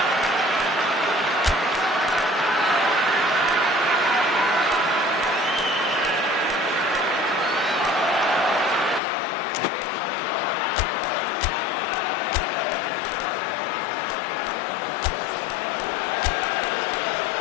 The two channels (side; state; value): right; drops out; at 9.0 s